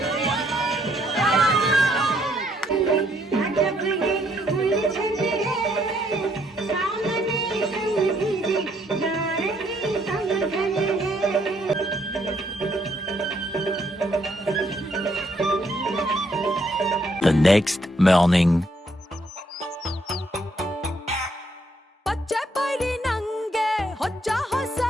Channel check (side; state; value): both; normal; correlation 0.71